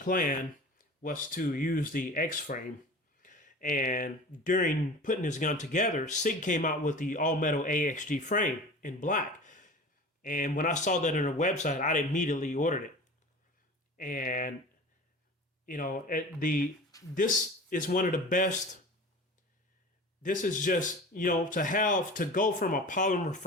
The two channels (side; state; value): both; normal; correlation 0.37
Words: was to use the X-frame. And during putting this gun together, SIG came out with the all-metal AXG frame in black. And when I saw that on their website, I immediately ordered it. And, you know, this is one of the best. This is just, you know, to go from a polymer